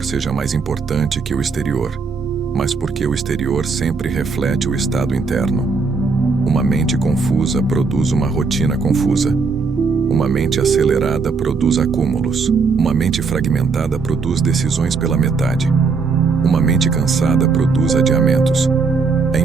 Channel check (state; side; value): quieter; left; 4.7 dB